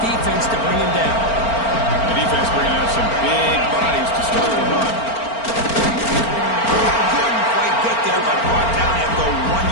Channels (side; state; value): right; late; 4.4 ms